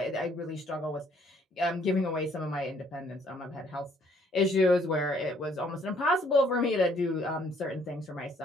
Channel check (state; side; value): normal; both; correlation 0.64